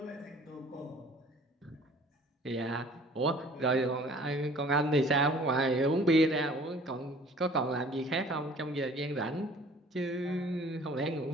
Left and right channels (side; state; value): both; normal; correlation 0.51